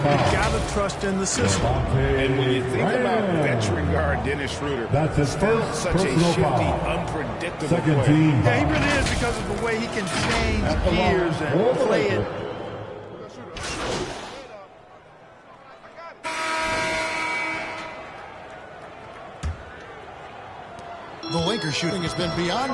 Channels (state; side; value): identical; both; correlation 1.00